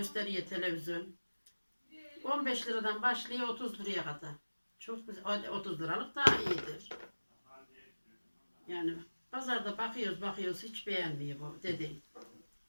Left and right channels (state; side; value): inverted; both; correlation -1.00